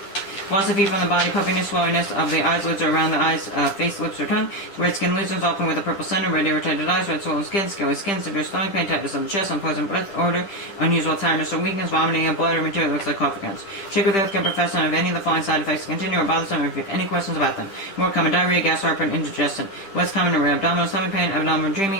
loss of heat from the body, puffiness, swellingness of the eyes, lids or around the eyes, face, lips, or tongue, red skin lesions, often with a purple center, red irritated eyes, red swollen skin, scaly skin, severe stomach pain, tightness of the chest, unpleasant breath odor, unusual tiredness or weakness, vomiting of blood or material that looks like coffee grounds. Check with the healthcare professional if any of the following side effects continue or bothersome, or if you have any questions about them. More common, diarrhea, gas, heartburn, indigestion. Less common, abdominal stomach pain, abdominal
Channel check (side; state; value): right; late; 10 ms